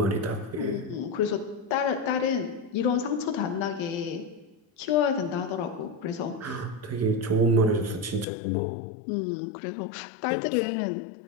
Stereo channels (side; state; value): right; drops out; at 8.2 s